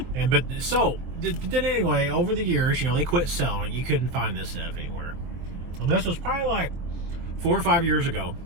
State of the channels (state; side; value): late; left; 24 ms